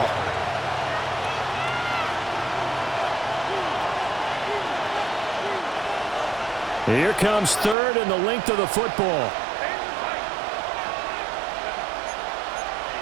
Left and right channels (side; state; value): left; drops out; at 7.8 s